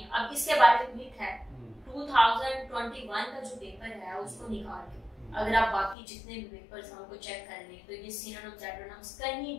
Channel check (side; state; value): right; drops out; at 6.0 s